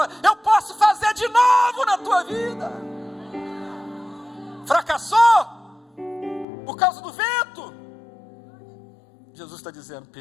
eu posso fazer de novo na tua vida. Fracassou por causa do vento? Jesus está dizendo,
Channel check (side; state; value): right; drops out; at 6.5 s